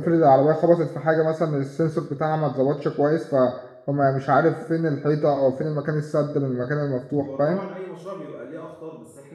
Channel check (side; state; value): both; identical; correlation 1.00